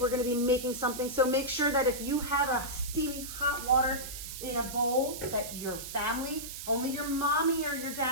going to be making something. So make sure that if you have a steamy hot water in a bowl, that your family, only your mommy or your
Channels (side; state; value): right; noise; hiss, 9 dB below the sound